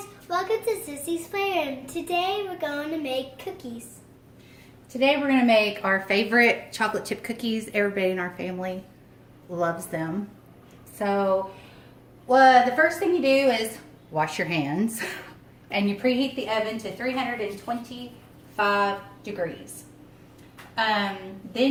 welcome to Sissy's Playroom. Today we're going to make cookies. Today we're going to make our favorite chocolate chip cookies. Everybody in our family loves them. So the first thing you do is wash your hands and you preheat the oven to 325 degrees.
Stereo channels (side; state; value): both; identical; correlation 1.00